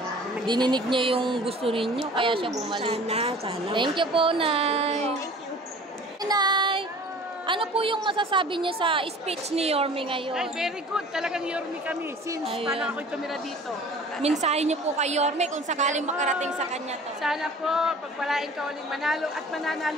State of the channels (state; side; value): normal; both; correlation 0.45